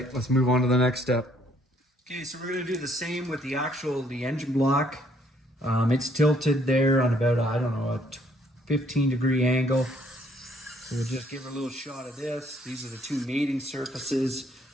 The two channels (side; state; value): both; normal; correlation 0.65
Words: let's move on to the next step. Okay, so we're gonna do the same with the engine block. It's tilted there on about, I don't know, a 15-degree angle. So we'll just give her a little shot of this. These are the two mating surfaces.